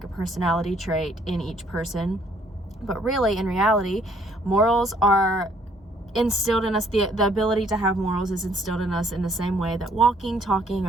a personality trait in each person, but really, in reality, morals are instilled in us. The ability to have morals is instilled in us in the same way that walking, talking,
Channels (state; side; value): normal; both; correlation 0.64